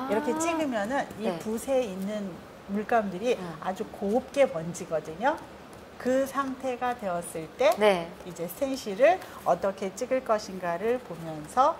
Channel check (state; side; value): identical; both; correlation 1.00